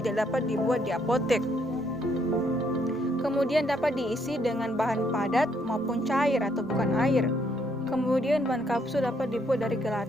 dapat dibuat di apotek. Kemudian dapat diisi dengan bahan padat maupun cair atau bukan air. Kemudian bahan kapsul dapat dibuat dari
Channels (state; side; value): normal; both; correlation 0.71